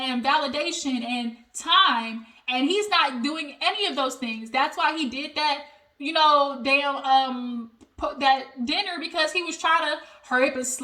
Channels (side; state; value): both; identical; correlation 1.00